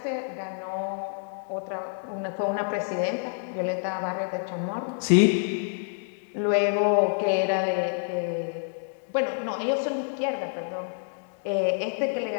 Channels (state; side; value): silent; right; digital silence